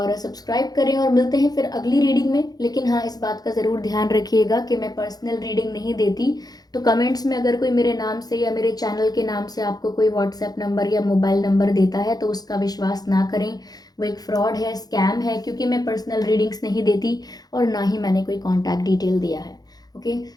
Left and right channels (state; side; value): late; right; 0.19 ms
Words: सब्सक्राइब करें, और मिलते हैं फिर अगली रीडिंग में। लेकिन हाँ, इस बात का ज़रूर ध्यान रखिएगा कि मैं पर्सनल रीडिंग नहीं देती, तो कमेंट्स में अगर कोई मेरे नाम से या मेरे चैनल के नाम से आपको कोई व्हाट्सएप नंबर या मोबाइल नंबर देता है तो उसका विश्वास ना करें, वो एक फ्रॉड है, स्कैम है, क्योंकि मैं पर्सनल रीडिंग्स नहीं देती और ना ही मैंने कोई कॉन्टैक्ट डिटेल दिया है। Okay,